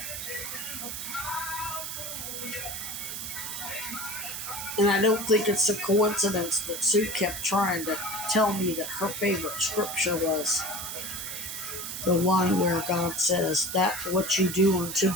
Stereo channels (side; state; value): right; noise; hiss, 6 dB below the sound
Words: And I don't think it's a coincidence that Sue kept trying to tell me that her favorite scripture was the one where God says, that what you do unto